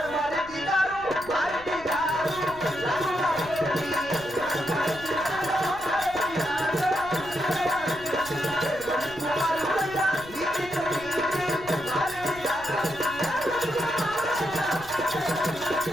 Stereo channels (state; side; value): noise; left; rumble, 19 dB below the sound